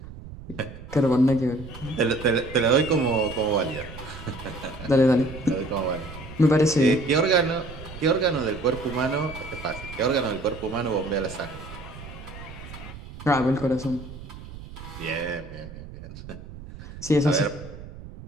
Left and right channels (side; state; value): right; noise; rumble, 14 dB below the sound